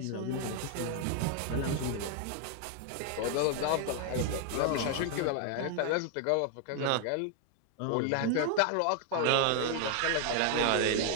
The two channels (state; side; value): different; both; correlation 0.00